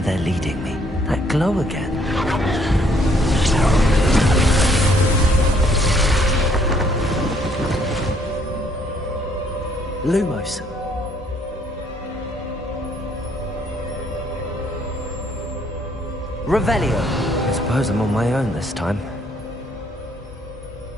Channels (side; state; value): both; normal; correlation 0.66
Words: leading me. That glow again. Lumos. Revelio. I suppose I'm on my own this time.